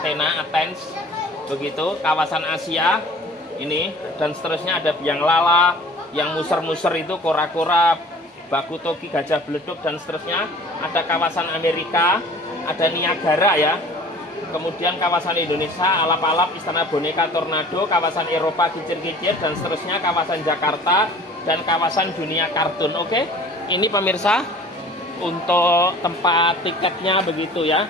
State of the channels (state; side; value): normal; both; correlation 0.47